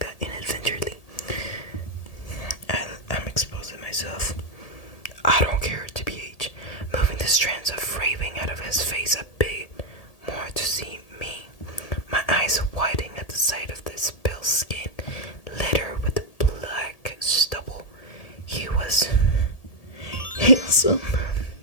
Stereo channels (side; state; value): right; late; 1.8 ms